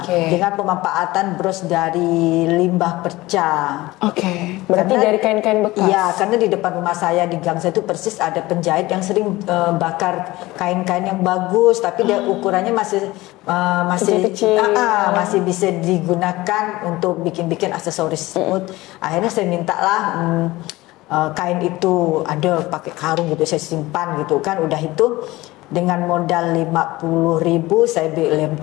dengan pemanfaatan bros dari limbah perca. Berarti karena, dari kain-kain bekas? Iya, karena di depan rumah saya, di gang saya itu persis ada penjahit yang sering bakar kain-kain yang bagus, tapi dia ukurannya masih masih bisa digunakan untuk bikin-bikin aksesoris tersebut. Akhirnya saya mintalah kain itu, ada pakai karung gitu, saya simpan gitu kan. Udah itu dengan modal 50.000 saya beli lem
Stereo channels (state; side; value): quieter; right; 19.2 dB